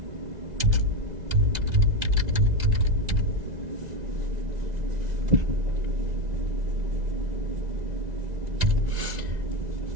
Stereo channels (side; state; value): left; late; 1.9 ms